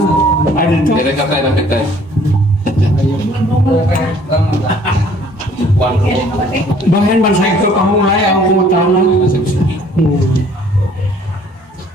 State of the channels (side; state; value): both; normal; correlation 0.57